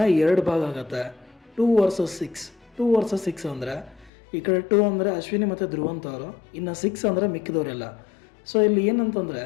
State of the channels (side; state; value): right; drops out; at 4.1 s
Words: 2 ಭಾಗ ಆಗುತ್ತೆ, 2 ವರ್ಸಸ್ 6. 2 ವರ್ಸಸ್ 6 ಅಂದರೆ ಈ ಕಡೆ 2 ಅಂದರೆ ಅಶ್ವಿನಿ ಮತ್ತು ಧ್ರುವಂತ್ ಅವರು, ಇನ್ನು 6 ಅಂದರೆ ಮಿಕ್ಕಿದವರೆಲ್ಲ. ಸೊ ಇಲ್ಲಿ ಏನಂತಂದರೆ